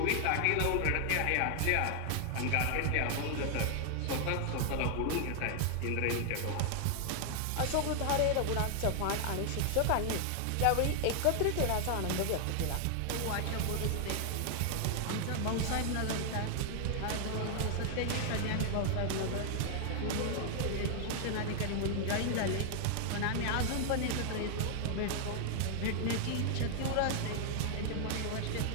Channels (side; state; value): both; different; correlation 0.00